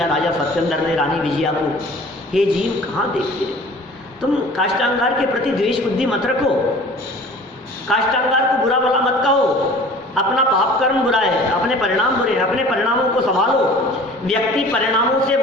राजा सत्येंद्र ने रानी विजया को। हे जीव, कहाँ देखते हो तुम, काष्टांगार के प्रति द्वेष बुद्धि मत रखो, काष्टांगार को बुरा भला मत कहो। अपना पाप कर्म बुरा है, अपने परिणाम बुरे हैं, अपने परिणामों को संभालो। व्यक्ति परिणामों से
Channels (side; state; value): both; normal; correlation 0.45